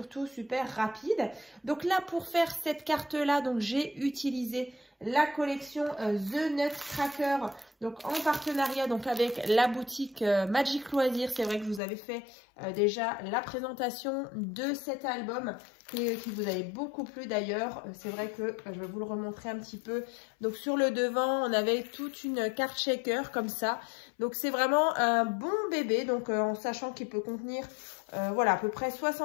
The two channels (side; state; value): right; drops out; at 11.8 s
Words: super rapide. Donc là, pour faire cette carte-là, donc j'ai utilisé la collection The Nutcracker, donc en partenariat donc avec la boutique Magic Loisirs. C'est vrai que je vous avais fait déjà la présentation de cet album qui vous avait beaucoup plu d'ailleurs. C'est vrai que je vais vous le remontrer un petit peu. Donc sur le devant, on avait toute une carte shaker comme ça. Donc c'est vraiment un bon bébé, donc en sachant qu'il peut contenir voilà, à peu près